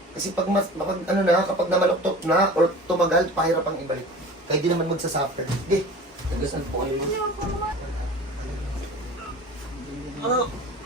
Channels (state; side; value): normal; both; correlation 0.39